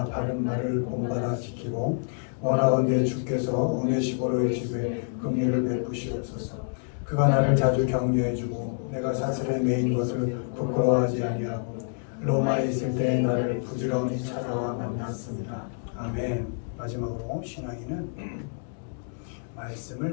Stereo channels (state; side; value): silent; right; digital silence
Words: 바른 말을 본받아 지키고 원하건대 주께서 오네시보로의 집에 긍휼을 베푸시옵소서. 그가 나를 자주 격려해주고 내가 사슬에 매인 것을 부끄러워하지 아니하고 로마에 있을 때 나를 부지런히 찾아와 만났습니다. 아멘. 마지막으로 신앙인은